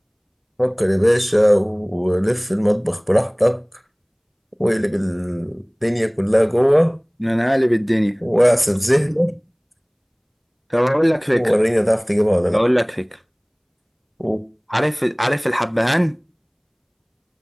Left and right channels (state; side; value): identical; both; correlation 1.00